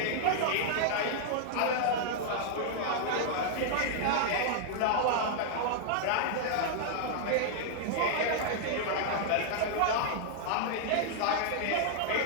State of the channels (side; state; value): both; different; correlation -0.01